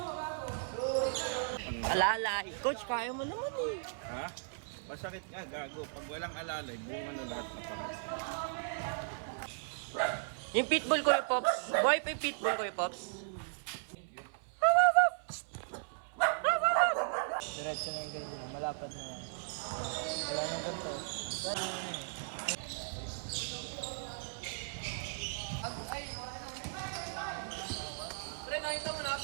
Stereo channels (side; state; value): left; silent; 53 dB below the other